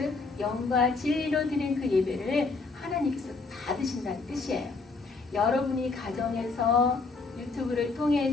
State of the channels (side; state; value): right; quieter; 4.1 dB